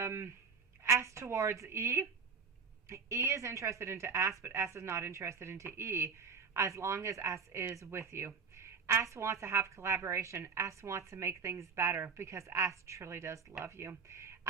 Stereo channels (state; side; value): quieter; left; 5.7 dB